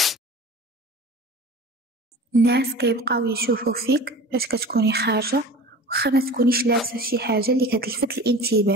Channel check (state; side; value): normal; both; correlation 0.38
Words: الناس كيبقاو يشوفوا فيك فاش كتكوني خارجة، وخا ما تكونيش لابسة شي حاجة اللي كتلفت